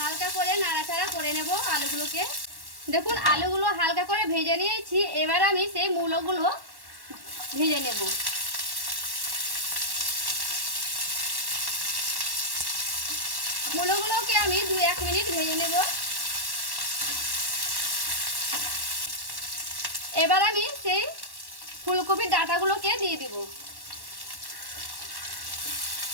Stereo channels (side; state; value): left; late; 1.1 ms